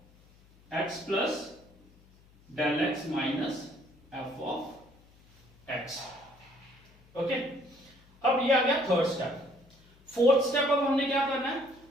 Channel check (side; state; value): left; noise; hum, 28 dB below the sound